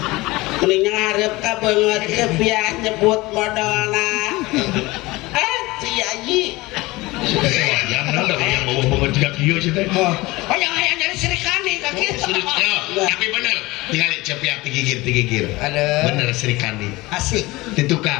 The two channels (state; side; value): quieter; right; 21.1 dB